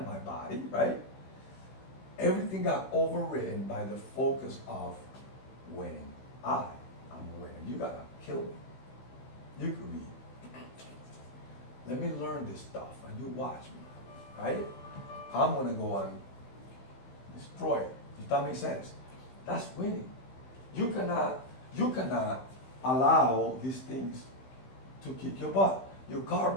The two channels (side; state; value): right; late; 15 ms